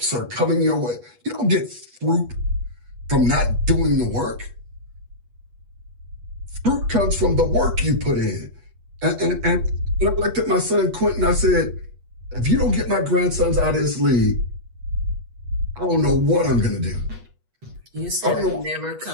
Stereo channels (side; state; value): left; late; 8.3 ms